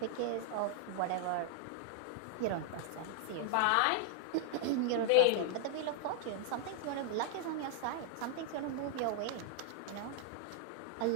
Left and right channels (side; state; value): both; different; correlation 0.00